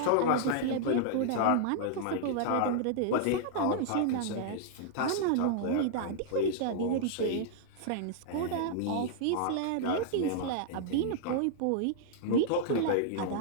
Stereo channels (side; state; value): both; different; correlation -0.01